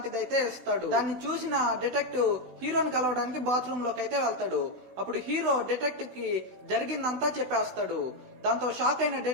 అయితే ఇస్తాడు. దాన్ని చూసిన డిటెక్టివ్ హీరోని కలవడానికి బాత్రూమ్ లోకి అయితే వెళ్తాడు. అప్పుడు హీరో డిటెక్టివ్ కి జరిగిందంతా చెప్పేస్తాడు. దాంతో షాక్ అయిన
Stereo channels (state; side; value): late; left; 16 ms